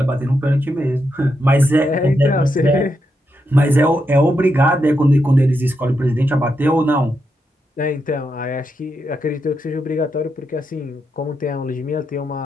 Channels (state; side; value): normal; both; correlation 0.83